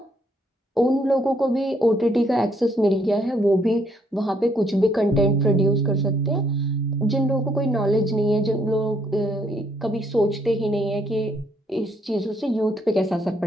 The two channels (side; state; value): both; normal; correlation 0.70